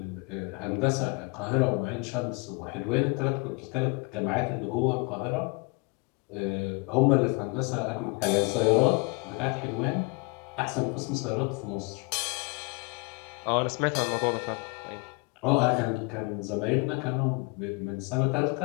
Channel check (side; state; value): right; quieter; 30.0 dB